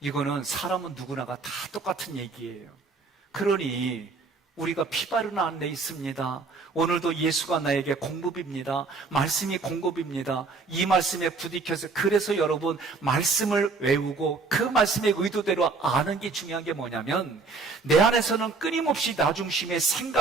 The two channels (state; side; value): quieter; left; 4.2 dB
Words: 이거는 사람은 누구나가 다 똑같은 얘기예요. 그러니 우리가 피 바른 안에 있습니다. 오늘도 예수가 나에게 공급입니다. 말씀이 공급입니다. 이 말씀에 부딪혀서, 그래서 여러분 말씀을 외우고 그 말씀의 의도대로 아는 게 중요한 게 뭐냐면, 내 안에서는 끊임없이 나 중심의